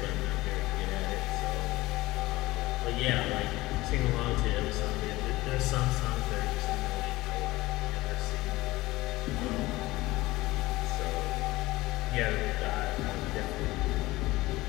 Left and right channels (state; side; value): quieter; right; 19.2 dB